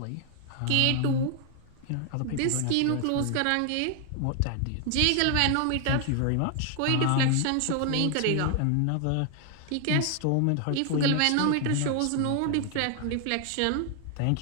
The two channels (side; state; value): both; different; correlation 0.00